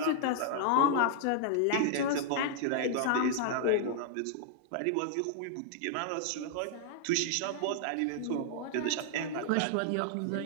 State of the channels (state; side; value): different; both; correlation -0.01